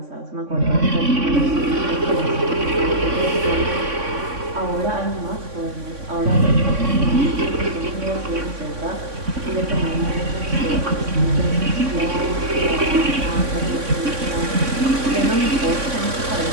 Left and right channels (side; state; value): left; late; 3.6 ms